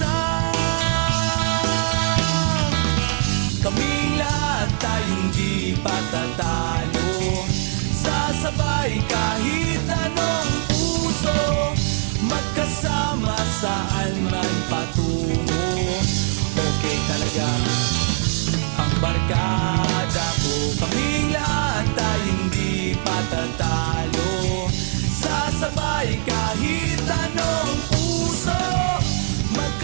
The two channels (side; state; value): left; silent; digital silence